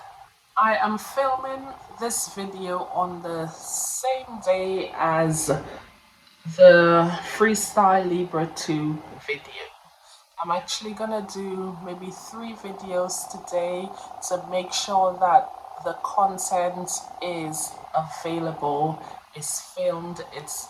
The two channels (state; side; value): identical; both; correlation 1.00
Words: I am filming this video on the same day as the Freestyle Libra 2 video. I'm actually gonna do maybe 3 videos today to make sure that the content is available, is filmed, it's